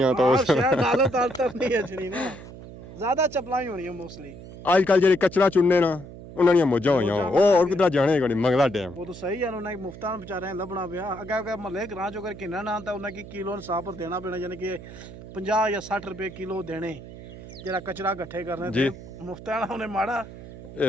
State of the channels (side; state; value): right; noise; hum, 15 dB below the sound